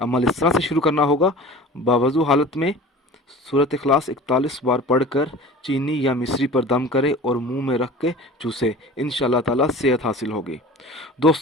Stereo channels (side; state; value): both; normal; correlation 0.39